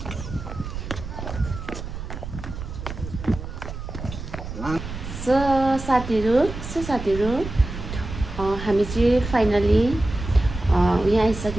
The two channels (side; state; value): right; noise; rumble, 9 dB below the sound